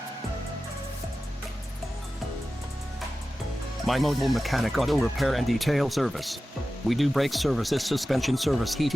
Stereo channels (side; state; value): both; normal; correlation 0.94